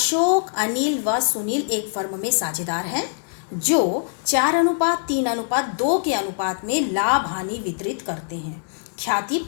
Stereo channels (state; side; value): silent; right; digital silence